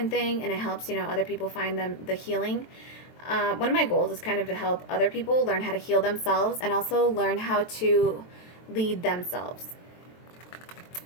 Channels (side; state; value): right; late; 23 ms